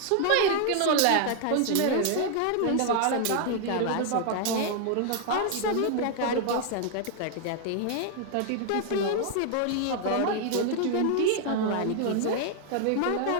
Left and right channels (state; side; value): different; both; correlation 0.00